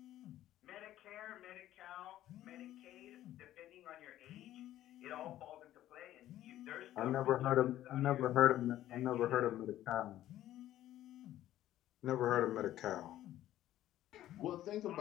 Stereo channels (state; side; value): quieter; right; 13.3 dB